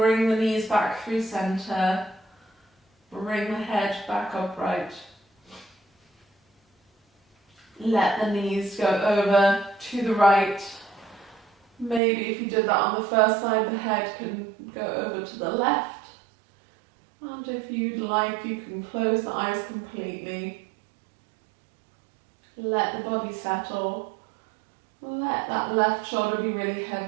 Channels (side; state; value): left; drops out; at 12.0 s